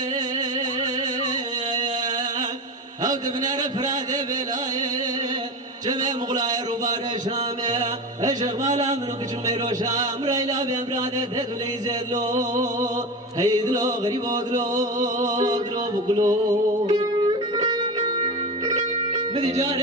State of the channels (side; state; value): both; normal; correlation 0.25